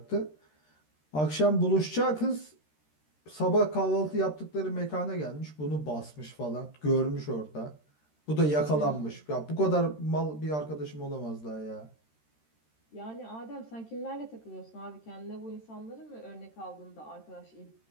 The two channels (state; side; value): late; right; 13 ms